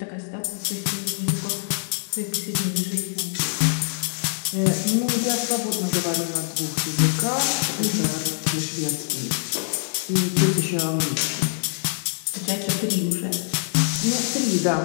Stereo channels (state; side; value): silent; right; digital silence